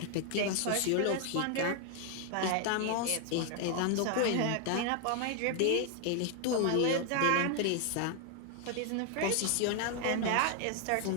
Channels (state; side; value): different; both; correlation 0.00